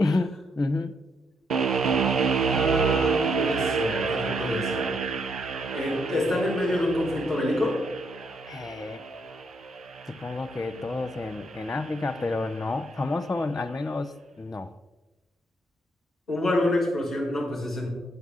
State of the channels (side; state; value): both; normal; correlation 0.75